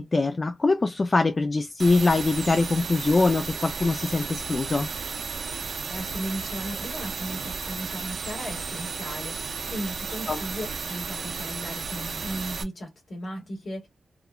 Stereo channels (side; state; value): both; normal; correlation 0.93